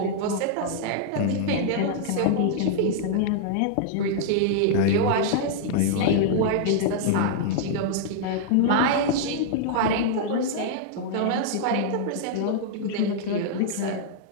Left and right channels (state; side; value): different; both; correlation -0.01